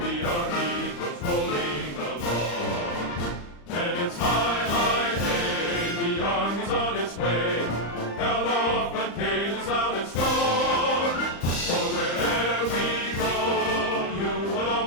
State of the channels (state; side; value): late; right; 35 ms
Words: see our heroes rolling along. And it's high, high, hey, the army's on its way. Count off the cages loud and strong. For wherever we go, you will